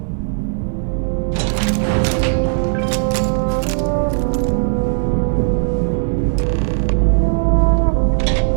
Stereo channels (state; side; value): silent; left; digital silence